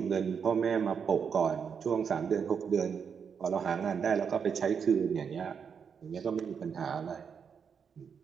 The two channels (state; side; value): quieter; left; 6.7 dB